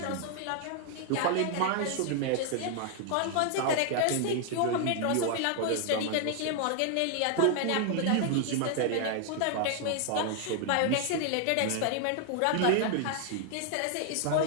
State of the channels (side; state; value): both; different; correlation 0.00